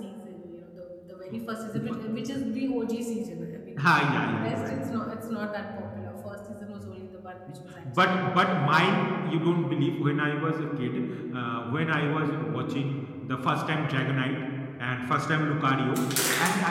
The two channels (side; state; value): both; identical; correlation 1.00